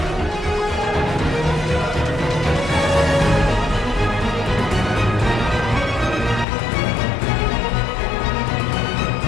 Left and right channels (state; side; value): drops out; right; at 6.5 s